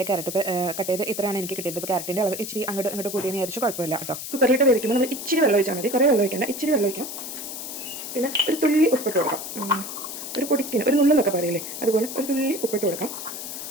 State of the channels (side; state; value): left; noise; hiss, 8 dB below the sound